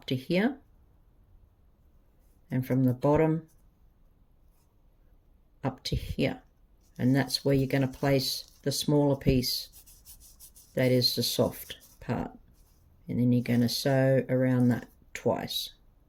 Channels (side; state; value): both; identical; correlation 1.00